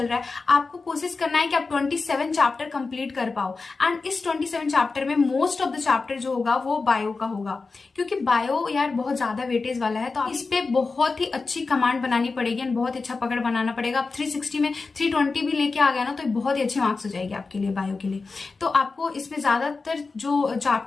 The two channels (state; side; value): quieter; right; 4.1 dB